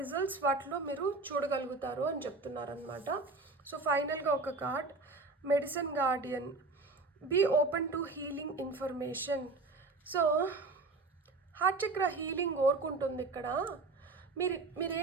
వాటిలో మీరు చూడగలుగుతారు అని చెప్తున్నారనమాట. సో ఫైనల్గా ఒక card, medicine guardian. Be open to healing information. So heart chakra healing కోరుకుంటుంది ఇక్కడ.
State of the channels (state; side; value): quieter; left; 3.6 dB